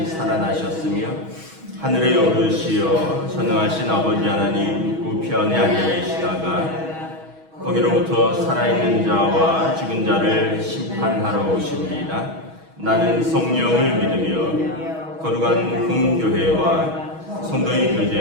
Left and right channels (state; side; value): late; left; 6.2 ms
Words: 살아나셨으며 하늘에 오르시어 전능하신 아버지 하나님 우편에 앉아 계시다가 거기로부터 살아있는 자와 죽은 자를 심판하러 오십니다. 나는 성령을 믿으며 거룩한 공교회와 성도의